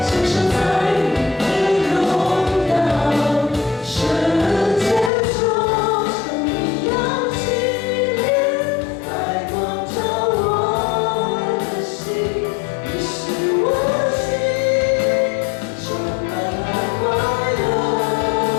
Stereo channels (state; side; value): drops out; right; at 5.1 s